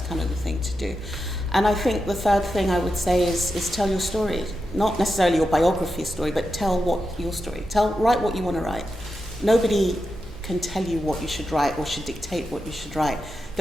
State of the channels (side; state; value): both; normal; correlation 0.88